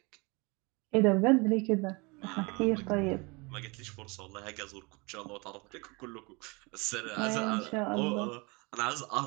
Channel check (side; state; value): left; quieter; 27.7 dB